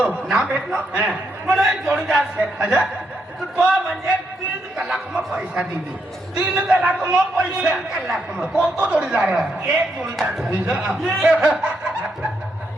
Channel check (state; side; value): normal; both; correlation 0.79